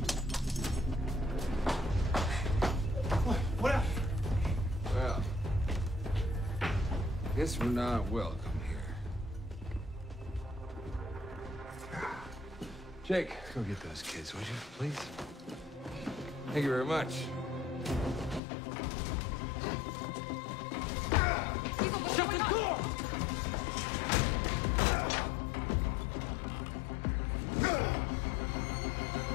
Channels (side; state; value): right; drops out; at 18.4 s